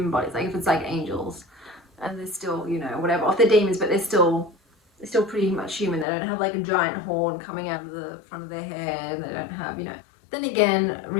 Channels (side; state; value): right; drops out; at 6.1 s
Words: bodies, like if it's like angels and they're still, you know, whatever, or if they're demons, but they're still pretty much human. They don't have like a giant horn coming out of the front of their head, and they don't have, you know. Then again,